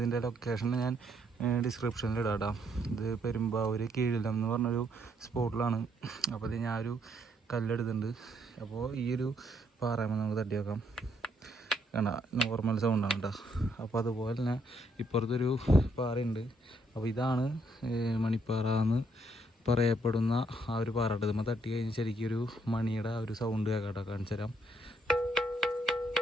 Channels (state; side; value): normal; both; correlation 0.72